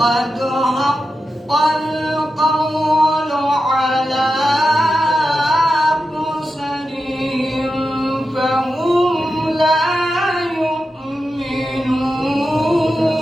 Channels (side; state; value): both; normal; correlation 0.90